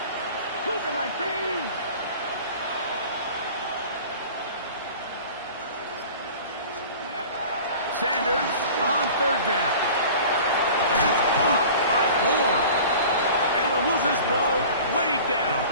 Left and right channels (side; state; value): both; inverted; correlation -0.42